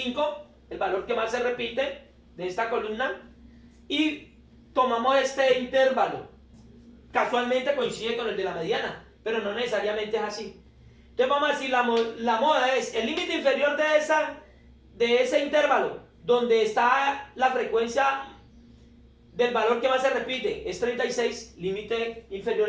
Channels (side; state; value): both; identical; correlation 1.00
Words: el valor que más se repite de esta columna. Y tomamos este intervalo. Casualmente coincide con el de la mediana, pero no necesariamente es así. Entonces vamos a decir, la moda es el límite inferior de ese intervalo, donde está la frecuencia del valor que más se repite, es 36, límite inferior